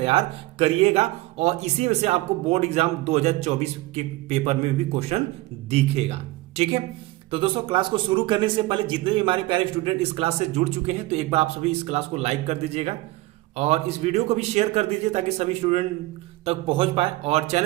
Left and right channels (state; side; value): quieter; left; 19.3 dB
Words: करिएगा और इसी में से आपको बोर्ड एग्जाम 2024 के पेपर में भी क्वेश्चन दिखेगा। ठीक है, तो दोस्तों क्लास को शुरू करने से पहले जितने भी हमारे प्यारे स्टूडेंट इस क्लास से जुड़ चुके हैं तो एक बार आप सभी इस क्लास को लाइक कर दीजिएगा और इस वीडियो को भी शेयर कर दीजिए ताकि सभी स्टूडेंट तक पहुंच पाए। और